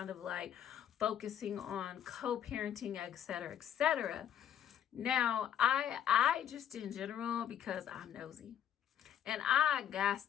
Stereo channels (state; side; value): quieter; right; 9.9 dB